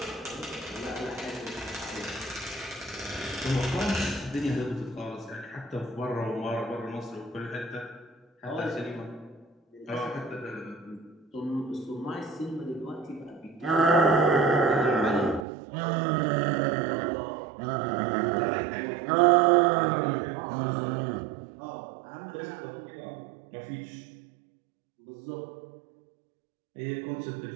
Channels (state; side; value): drops out; left; at 15.5 s